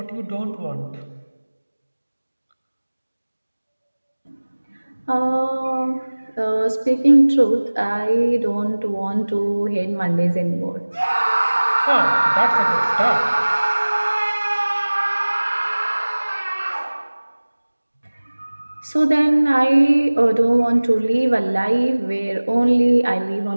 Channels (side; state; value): both; inverted; correlation -1.00